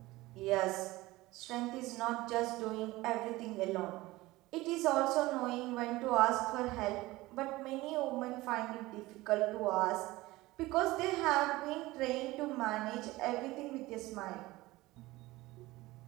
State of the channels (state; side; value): quieter; left; 19.3 dB